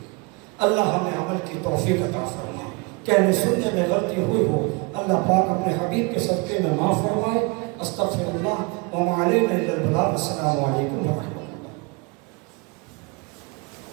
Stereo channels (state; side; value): quieter; left; 29.4 dB